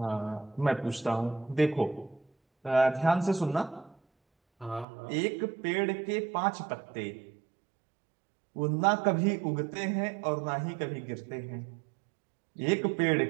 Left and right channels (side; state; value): left; drops out; at 4.9 s